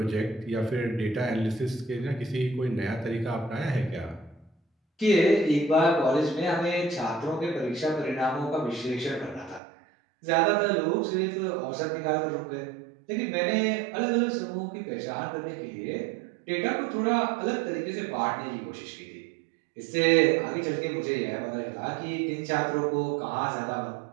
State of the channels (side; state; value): left; drops out; at 9.6 s